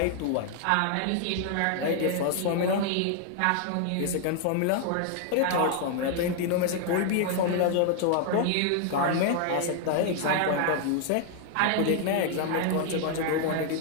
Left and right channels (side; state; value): both; different; correlation 0.00